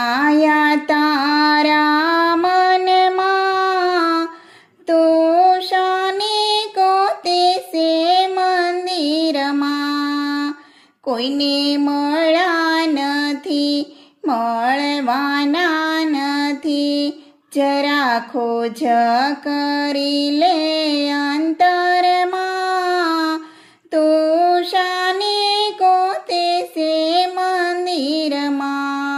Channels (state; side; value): identical; both; correlation 1.00